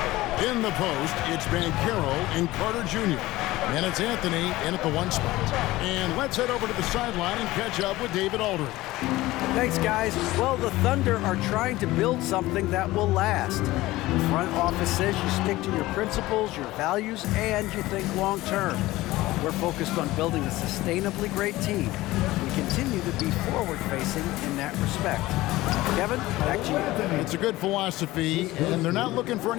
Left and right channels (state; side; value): quieter; right; 18.0 dB